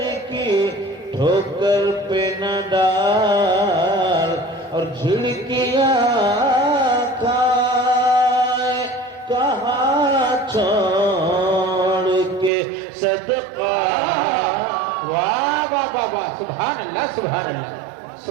کی ٹھوکر پہ نہ ڈال. اور جھڑکیاں کھائے کہاں چھوڑ کے صدقہ. واہ واہ واہ واہ سبحان اللہ سبحان اللہ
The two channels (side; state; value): left; drops out; at 12.5 s